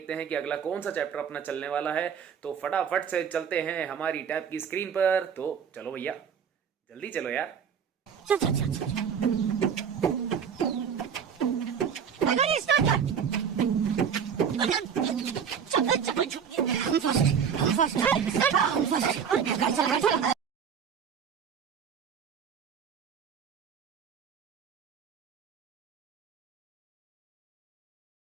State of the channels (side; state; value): left; quieter; 7.4 dB